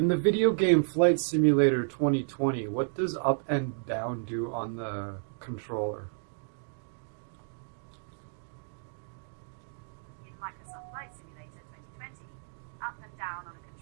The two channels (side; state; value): left; silent; digital silence